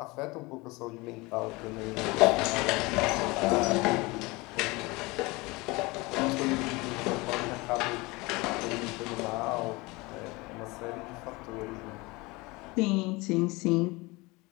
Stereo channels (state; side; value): quieter; right; 23.9 dB